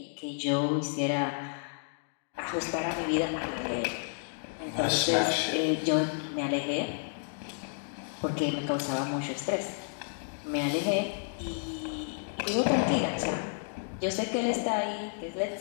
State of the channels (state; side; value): silent; right; digital silence